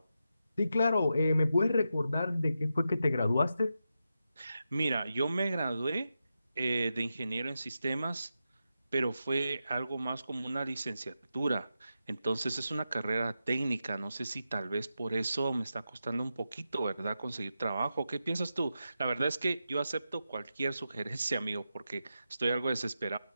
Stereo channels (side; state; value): both; inverted; correlation -0.88